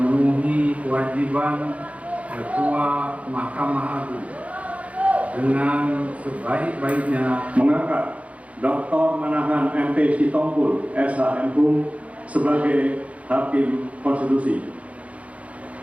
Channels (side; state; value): left; late; 0.066 ms